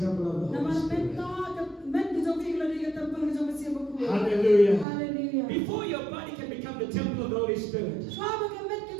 temple of the Holy Spirit. Hallelujah. Hallelujah. Before your body can become the temple of the Holy Spirit,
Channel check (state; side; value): drops out; left; at 4.9 s